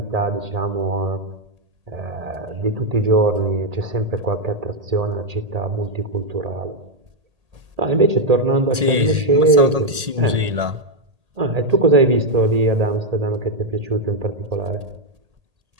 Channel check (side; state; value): left; late; 1.8 ms